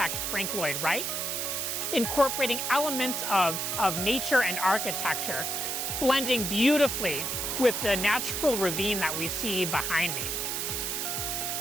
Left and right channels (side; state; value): right; noise; hiss, 1 dB below the sound